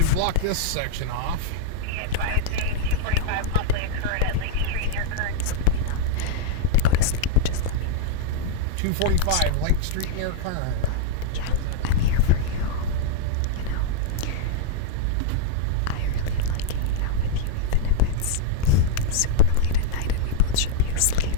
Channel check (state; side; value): different; both; correlation -0.01